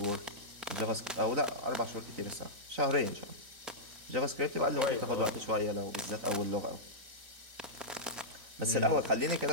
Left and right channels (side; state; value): left; late; 3.9 ms